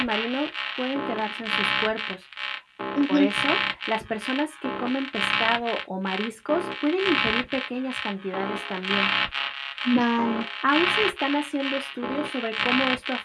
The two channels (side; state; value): both; identical; correlation 1.00